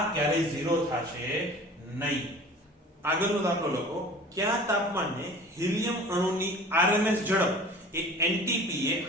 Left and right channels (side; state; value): both; normal; correlation 0.43